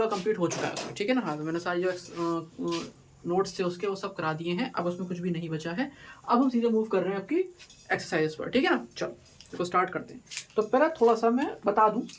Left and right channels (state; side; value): identical; both; correlation 1.00